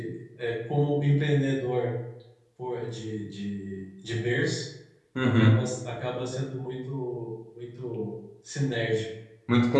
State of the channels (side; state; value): both; identical; correlation 1.00